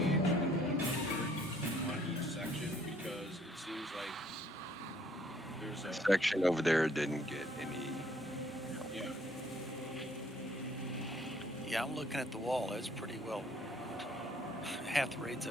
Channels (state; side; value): normal; both; correlation 0.63